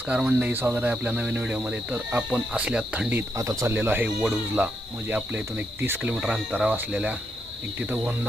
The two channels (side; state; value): both; normal; correlation 0.80